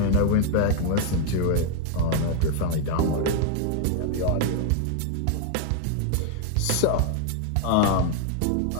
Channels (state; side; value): different; both; correlation 0.00